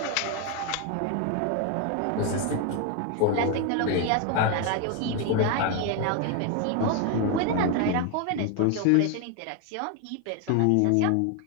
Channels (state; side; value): different; both; correlation 0.01